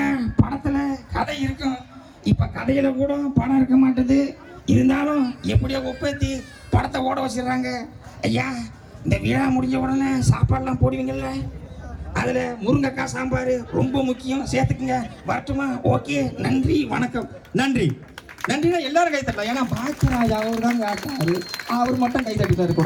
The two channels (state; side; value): identical; both; correlation 1.00